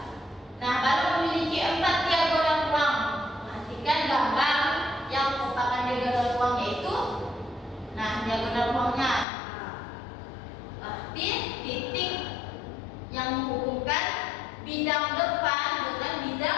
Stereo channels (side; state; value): right; drops out; at 9.2 s